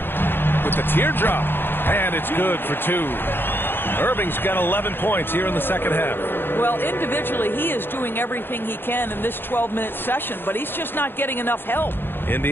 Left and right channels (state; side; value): late; right; 0.10 ms